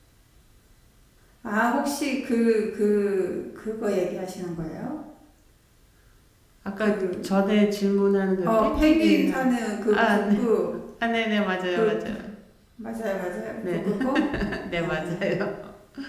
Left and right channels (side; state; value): both; identical; correlation 1.00